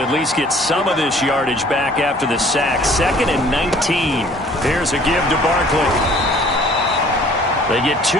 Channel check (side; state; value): both; normal; correlation 0.54